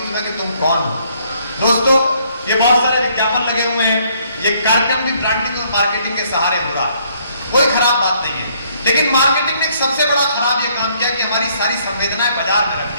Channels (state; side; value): inverted; both; correlation -0.67